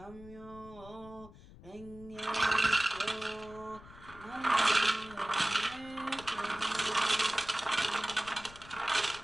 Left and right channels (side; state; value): left; noise; rumble, 19 dB below the sound